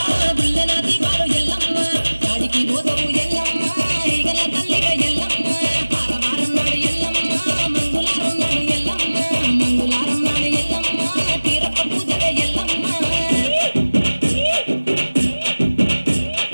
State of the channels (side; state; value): both; inverted; correlation -1.00